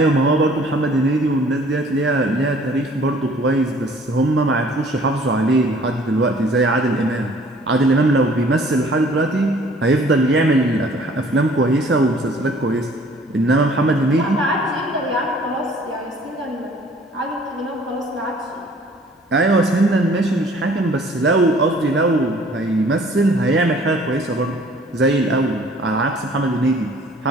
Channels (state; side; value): normal; both; correlation 0.54